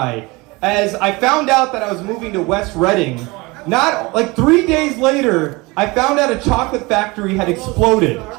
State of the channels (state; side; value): quieter; left; 24.2 dB